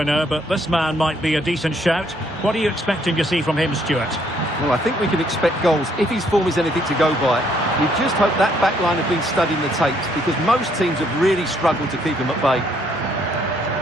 but this man might be a decent shout. What are you expecting to see from him, Stuart? Well, I think we can expect goals if his form is anything to go by. We just hope that back line have been studying the tapes, because most teams have really struggled to keep him at bay.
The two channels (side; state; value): both; normal; correlation 0.68